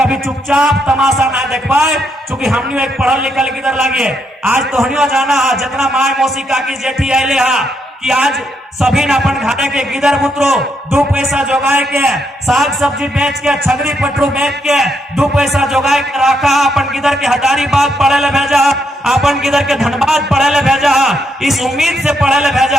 चुपचाप तमाशा ना देख पाए, क्योंकि हमने एक पढ़ल लिखल किधर लगे। आज तो हनियो जाना है जितना माय मौसी काकी जेठी आये हा कि आज सभी न अपन घाटे के गिदर बुतरो 2 पैसा जोगाए के, साग सब्जी बेच के, छगरी पटरू बेच के 2 पैसा जोगाए के रखा, अपन गिदर के हजारीबाग पढ़े ले भेजा, अपन गिदर के धनबाद पढ़े ले भेजा, इस उम्मीद से पढ़े ले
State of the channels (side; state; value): both; normal; correlation 0.78